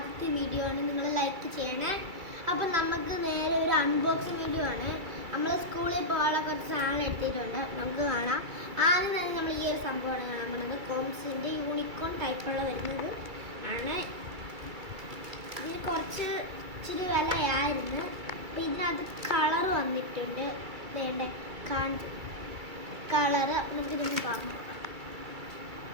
വീഡിയോ ആണ്, നിങ്ങൾ ലൈക്ക് ചെയ്യണേ. അപ്പം നമുക്ക് നേരെ ഒരു അൺബോക്സിങ് വീഡിയോ ആണ്. നമ്മൾ സ്കൂളിൽ പോകാനുള്ള കുറച്ച് സാധനം എടുത്തിട്ടുണ്ട്, നമുക്ക് കാണാം. ആദ്യം തന്നെ നമ്മൾ ഈ ഒരു സംഭവമാണ് കാണാൻ പോകുന്നത്. കോംസിൻ്റെ യൂണിക്കോൺ ടൈപ്പുള്ള വരുന്നത് ആണ്. ഇതിന് കുറച്ച് ഇച്ചിരി വിലയായിരുന്നു. അപ്പം ഇതിനകത്ത് കളർ വന്നിട്ടുണ്ട്. വേണ്ട കളറ് നമുക്കിതൊന്ന് പറഞ്ഞു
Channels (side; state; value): left; late; 2.3 ms